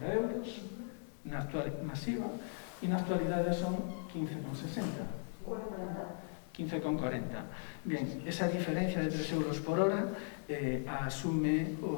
euros na actual masiva, e na actualidade son 15,60. 15,40. Bien, esa diferencia de 3 euros por hora asume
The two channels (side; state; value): right; silent; 53 dB below the other